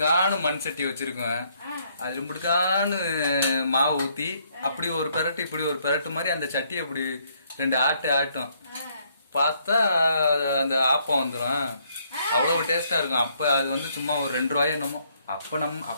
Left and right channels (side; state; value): both; inverted; correlation -0.69